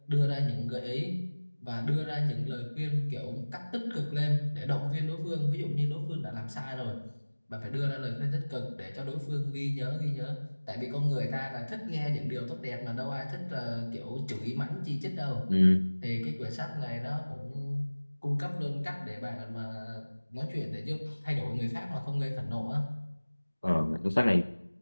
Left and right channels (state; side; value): inverted; both; correlation -1.00